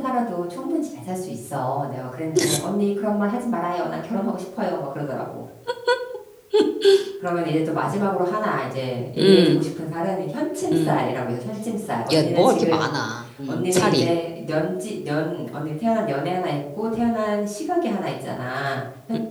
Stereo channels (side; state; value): both; identical; correlation 1.00